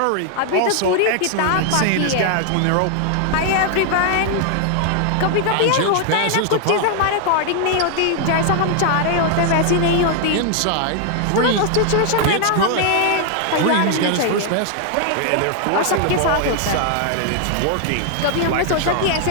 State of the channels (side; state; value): both; different; correlation 0.00